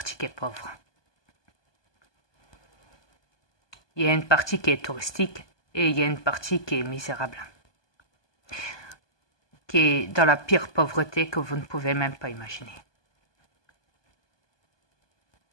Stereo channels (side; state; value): right; late; 1.2 ms